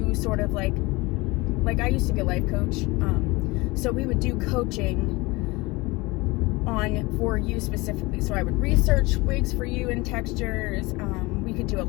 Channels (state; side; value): quieter; right; 23.3 dB